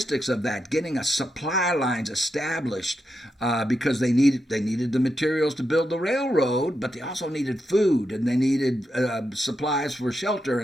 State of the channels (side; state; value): both; normal; correlation 0.85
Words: of that, getting a supply lines established, because they needed the materials to build the railroad, but they also needed food, and they needed supplies for shelter,